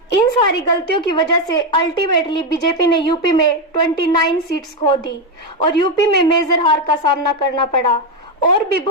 इन सारी गलतियों की वजह से अल्टीमेटली बीजेपी ने यूपी में 29 सीट्स खो दी और यूपी में मेजर हार का सामना करना पड़ा। और भी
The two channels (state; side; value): normal; both; correlation 0.07